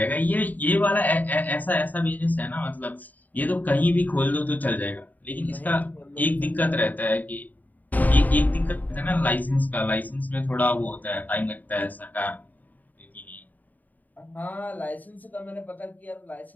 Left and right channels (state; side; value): late; right; 0.082 ms